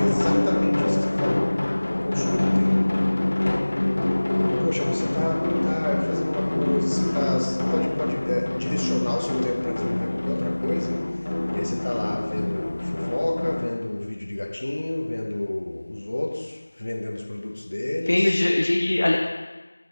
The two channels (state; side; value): inverted; both; correlation -1.00